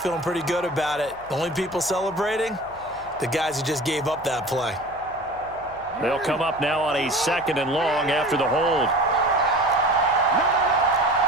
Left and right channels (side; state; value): left; noise; hum, 24 dB below the sound